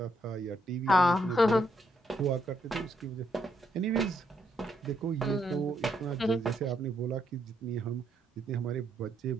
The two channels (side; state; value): both; normal; correlation 0.75